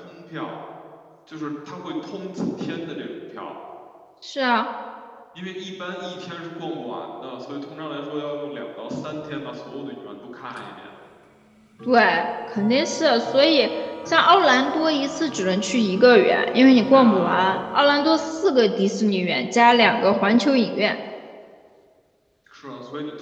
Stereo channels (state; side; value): identical; both; correlation 1.00